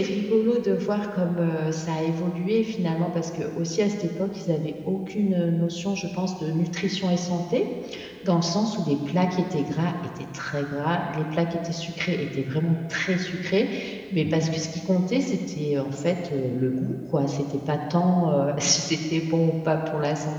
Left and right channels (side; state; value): both; identical; correlation 1.00